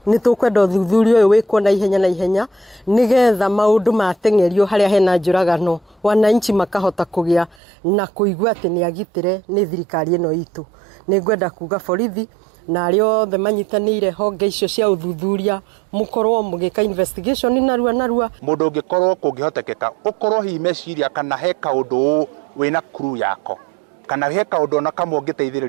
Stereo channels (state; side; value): drops out; left; at 7.6 s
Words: nĩ tũkwenda ũthuthuria ũyũ wĩkwo na ihenya nĩgetha maũndũ mateng'erio harĩa hena njũragano, wananchi makahota kũgĩa na kũigua atĩ nĩ agitĩre nĩ thirikari ĩno itũ. Nĩ ngwenda kuga borithi na arĩa othe manyitanĩire honge icio cia ũthuthuria mũkorwo mũgĩka investigation narua. Mũndũ ũngĩkorwo kũngĩhotekeka ũkorwo hihi meciria kana he kaũndũ wĩna crew yako kana he kaũndũ ona kamwe